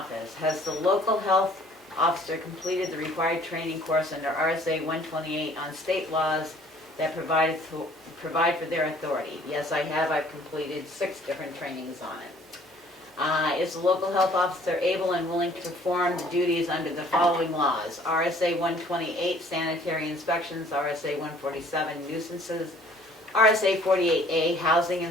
Has the local health officer completed the required training course under RSA 128 on state laws that provide for their authority? Yes, I have. I've completed 6 different trainings on it. Is the local health officer able and willing to perform the duties under the following laws? RSA 128, sanitary inspections, RSA 147, nuisances, RSA 48A, housing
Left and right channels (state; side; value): normal; both; correlation 0.57